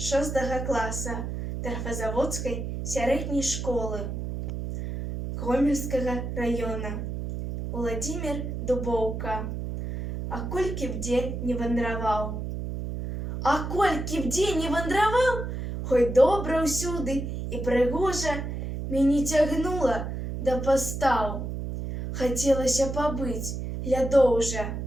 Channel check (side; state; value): right; noise; hum, 5 dB below the sound